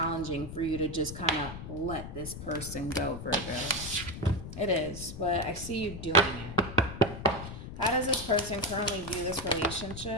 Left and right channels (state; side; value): noise; left; rumble, 9 dB below the sound